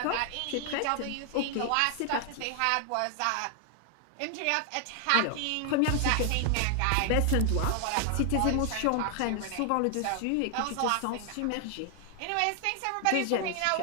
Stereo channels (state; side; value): different; both; correlation 0.00